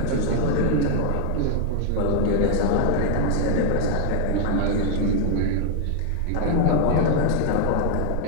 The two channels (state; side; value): different; both; correlation 0.00